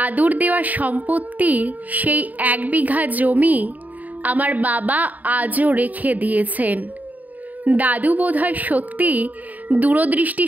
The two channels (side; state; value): left; late; 0.077 ms